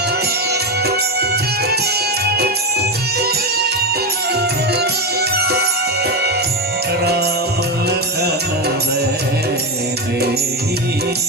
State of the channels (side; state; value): both; normal; correlation 0.12